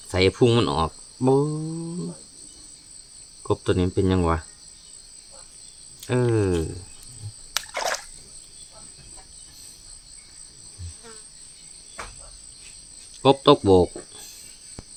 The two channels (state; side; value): identical; both; correlation 1.00